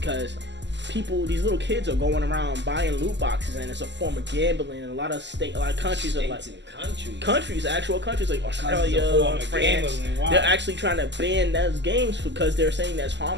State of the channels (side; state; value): left; late; 0.52 ms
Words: these little kids are going around buying loot boxes, and it's a form of gambling. And a lot of countries are like actual countries like Australia, France. Wow. They're actually trying to ban those games because they're saying that's